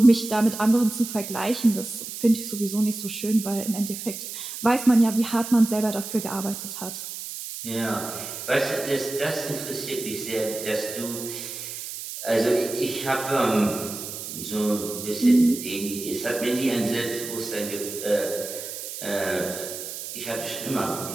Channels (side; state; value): right; noise; hiss, 8 dB below the sound